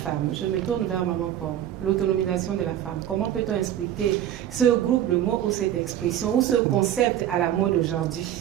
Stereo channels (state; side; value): quieter; left; 11.3 dB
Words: Je me tourne vers Maman Pomme. L'autonomisation de la femme. Comment peut-on expliquer ce groupe de mots ou cette expression ou ce concept à la mode aujourd'hui?